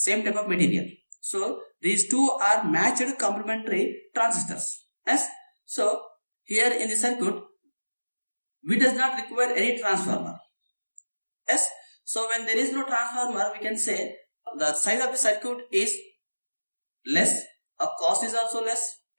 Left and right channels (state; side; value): inverted; both; correlation -1.00